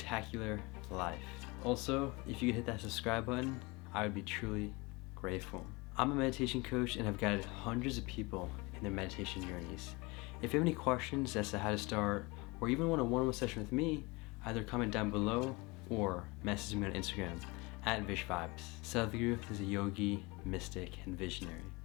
life. Also, if you could hit that subscribe button, I would be truly grateful. I'm a meditation coach and have guided hundreds of people in their meditation journeys. If you have any questions as to how to start, or even want a one-on-one session with me, either comment down below or message me on Instagram at VishVibes. Sadhguru is a yogi, mystic, and visionary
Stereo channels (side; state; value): right; quieter; 25.2 dB